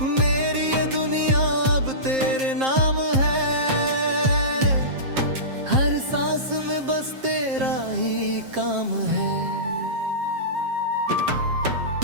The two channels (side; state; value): left; late; 7.6 ms